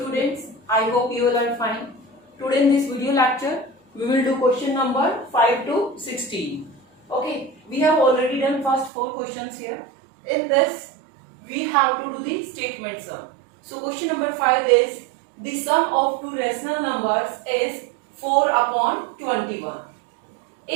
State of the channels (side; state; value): left; drops out; at 8.9 s